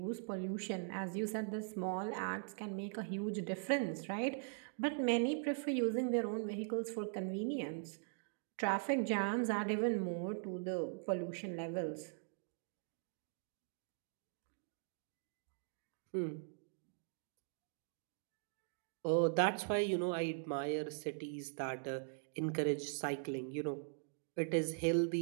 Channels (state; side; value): silent; left; digital silence